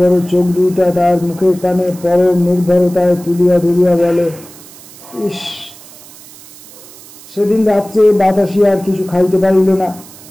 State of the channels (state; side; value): noise; right; hiss, 20 dB below the sound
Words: চোখ দুইটা তার মুখের কানে পরম নির্ভরতায় তুলিয়া ধরিয়া বলে, ইস! সেদিন রাত্রে বাতাসি আর কিছু খাইতে পারিল না।